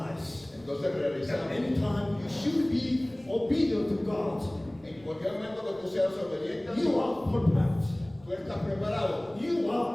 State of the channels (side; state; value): left; noise; rumble, 28 dB below the sound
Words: Entonces that realizamos. anytime you should be obedient to God, En cualquier momento que tú seas obediente, you are perfect. tú estás preparado. You